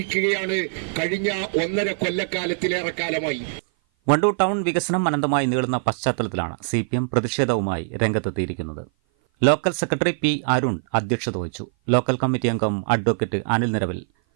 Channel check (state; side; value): silent; left; 56 dB below the other